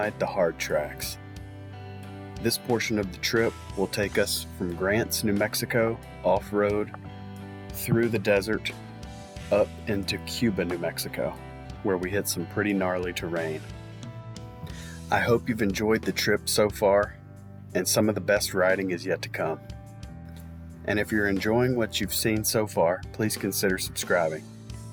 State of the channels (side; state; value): both; identical; correlation 1.00